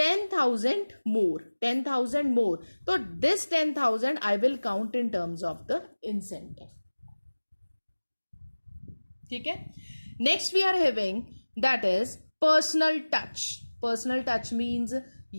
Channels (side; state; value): both; inverted; correlation -1.00